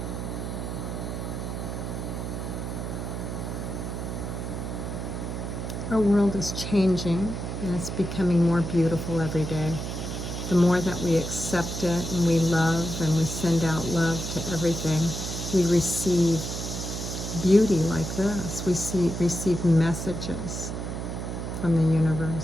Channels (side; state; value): right; noise; hum, 5 dB below the sound